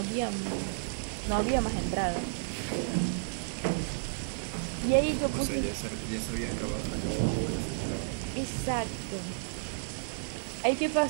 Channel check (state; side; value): silent; left; digital silence